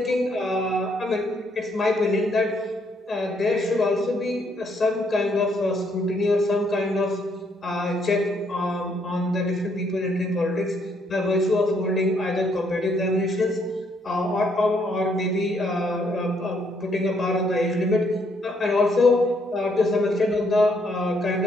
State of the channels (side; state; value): both; normal; correlation 0.71